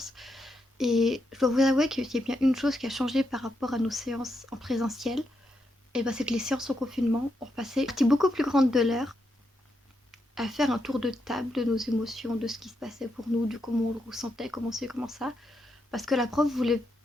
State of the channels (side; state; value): both; normal; correlation 0.82